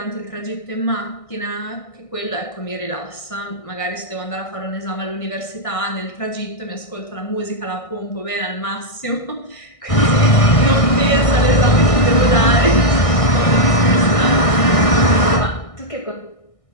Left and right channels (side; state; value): right; late; 1.6 ms